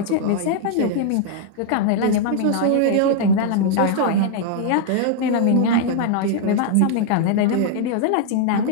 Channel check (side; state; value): both; different; correlation -0.01